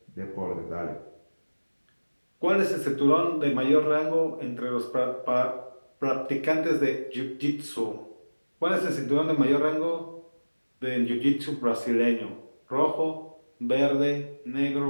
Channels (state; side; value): inverted; both; correlation -1.00